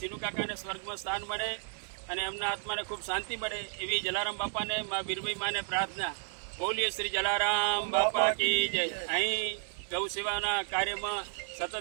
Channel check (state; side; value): silent; left; digital silence